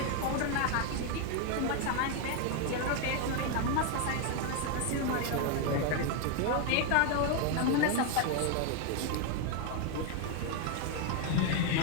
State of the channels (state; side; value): different; both; correlation 0.01